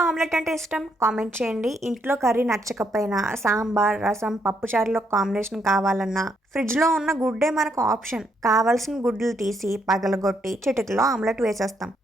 ఆమ్లెట్ అంటే ఇష్టం కామెంట్ చేయండి. ఇంట్లో కర్రీ నచ్చకపోయినా సాంబార్, రసం, పప్పుచారులో కాంబినేషన్ కావాలన్నా ఫ్రిడ్జ్ లో ఉన్న గుడ్డే మనకు ఆప్షన్. కావాల్సిన గుడ్లు తీసి పగలగొట్టి చిటికలో ఆమ్లెట్ వేసేస్తాం.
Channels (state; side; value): normal; both; correlation 0.75